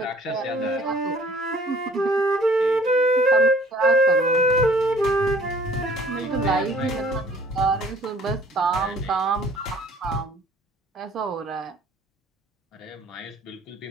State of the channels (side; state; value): both; normal; correlation 0.54